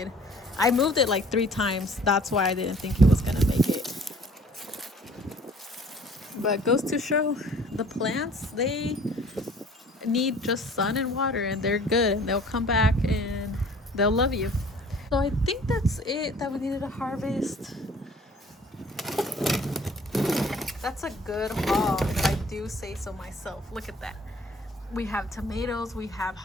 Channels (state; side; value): normal; both; correlation 0.52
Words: I moved it like 3 times. That's why I didn't think it was gonna make it. But goes to show, the plants, they need just sun and water, and they're good, and they'll come back and they'll love you. So I think that's it that we needed to harvest. That's a good haul, if I do say so myself. Look at that. We have tomatoes, we have